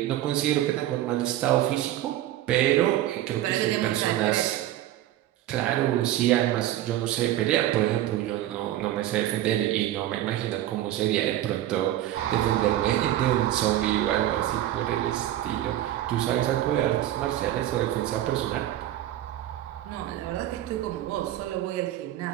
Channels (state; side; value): quieter; left; 13.5 dB